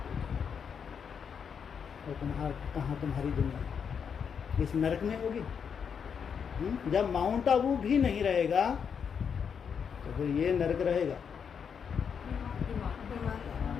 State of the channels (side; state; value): right; quieter; 6.9 dB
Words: और कहाँ तुम्हारी दुनिया? इस नर्क में होगी। जब माउंट आबू भी नहीं रहेगा तो फिर ये नर्क रहेगा।